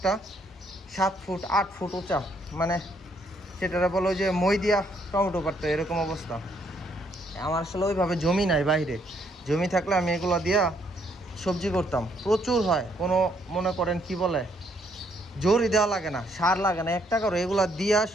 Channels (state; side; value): normal; both; correlation 0.70